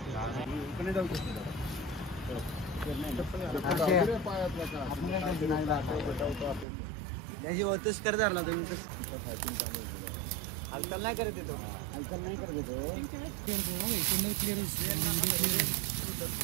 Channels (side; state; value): left; drops out; at 6.7 s